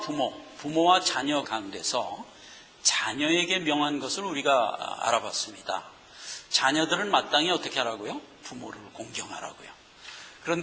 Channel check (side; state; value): both; identical; correlation 1.00